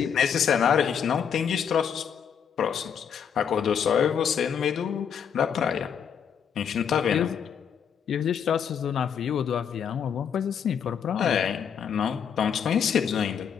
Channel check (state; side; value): quieter; right; 7.7 dB